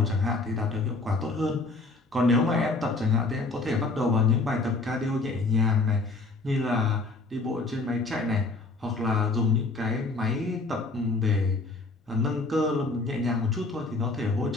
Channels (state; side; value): quieter; right; 3.5 dB